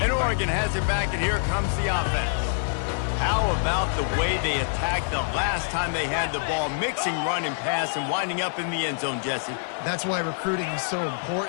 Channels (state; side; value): silent; right; digital silence